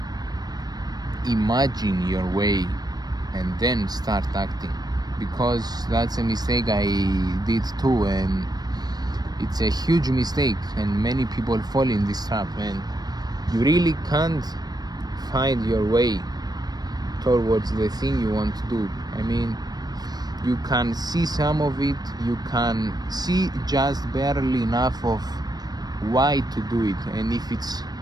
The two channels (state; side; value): late; left; 0.19 ms